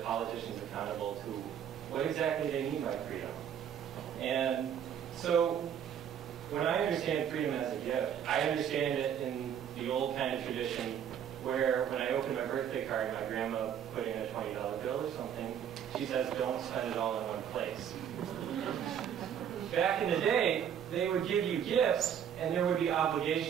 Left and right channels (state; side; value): quieter; left; 8.9 dB